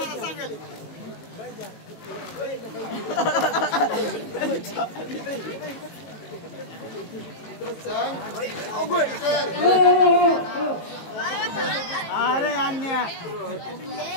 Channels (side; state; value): right; late; 18 ms